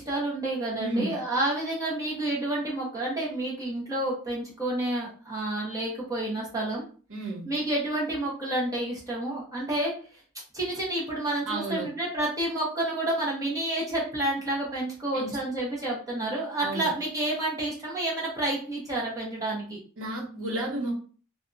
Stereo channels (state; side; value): normal; both; correlation 0.34